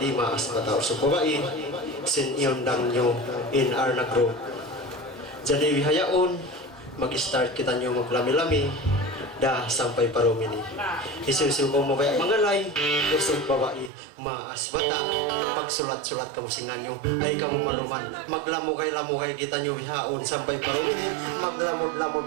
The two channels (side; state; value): left; drops out; at 13.9 s